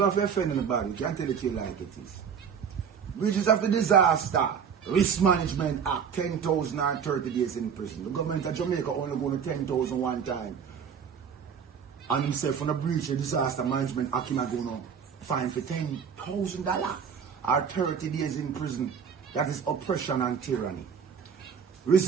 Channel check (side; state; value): left; quieter; 7.1 dB